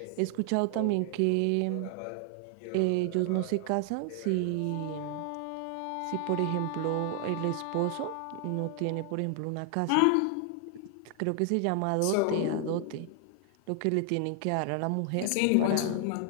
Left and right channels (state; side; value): different; both; correlation 0.00